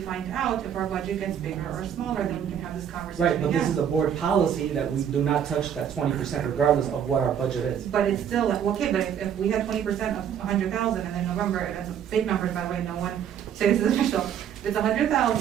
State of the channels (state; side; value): quieter; left; 8.9 dB